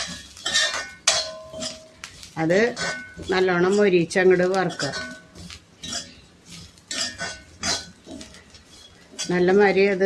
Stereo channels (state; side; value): identical; both; correlation 1.00